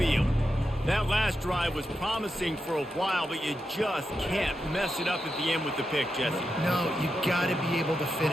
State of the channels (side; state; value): both; normal; correlation 0.87